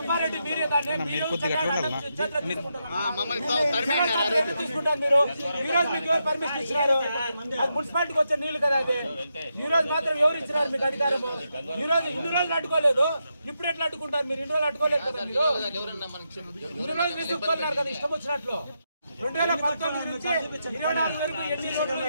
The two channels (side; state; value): both; inverted; correlation -0.84